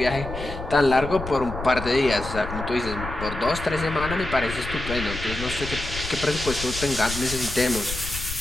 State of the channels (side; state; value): left; noise; rumble, 8 dB below the sound